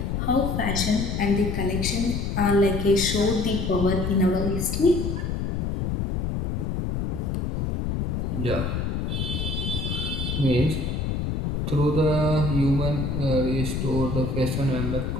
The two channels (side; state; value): left; noise; rumble, 1 dB below the sound